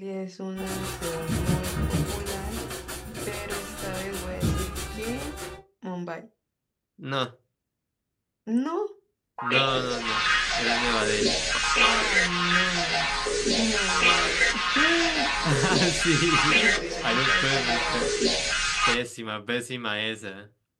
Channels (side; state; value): both; identical; correlation 1.00